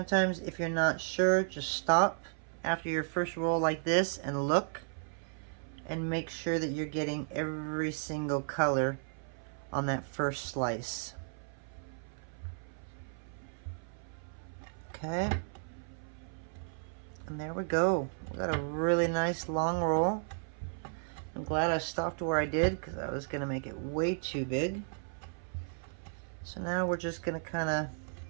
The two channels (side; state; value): left; silent; 55 dB below the other